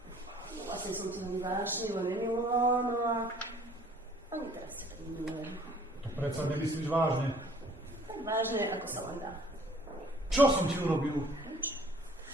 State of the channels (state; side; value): normal; both; correlation 0.56